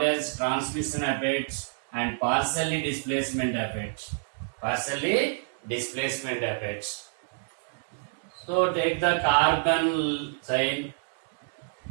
as transmission effect and partially displacement effect. Partially displacement effect. So take the carbon chain.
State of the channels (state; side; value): silent; left; digital silence